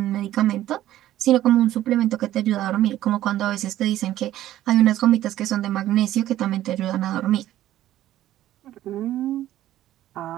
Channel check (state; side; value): quieter; left; 13.6 dB